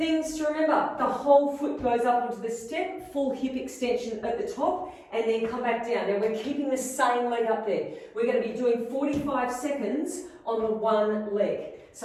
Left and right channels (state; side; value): identical; both; correlation 1.00